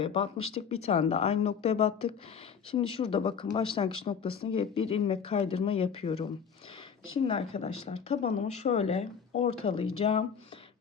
batmıştık. Bir tane de aynı noktaya battık. Şimdi şurada bakın başlangıç noktasına gelip bir ilmek kaydırma yapıyorum. Şimdi arkadaşlar tabanımı şöyle ortalayacağım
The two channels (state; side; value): quieter; right; 6.7 dB